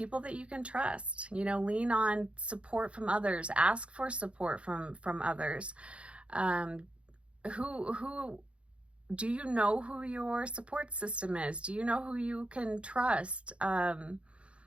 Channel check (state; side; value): late; left; 0.060 ms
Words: that you can trust, you know, lean on support from others, ask for support from others. Who do you know who your support system is? Do you know who you can trust?